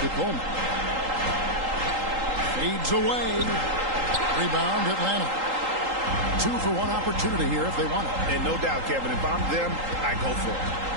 Coleman. Fades away. Rebound Atlanta. 2 for 1 opportunity here if they want it. And no doubt, Kevin, if I'm them, I go for it.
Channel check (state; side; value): late; left; 3.8 ms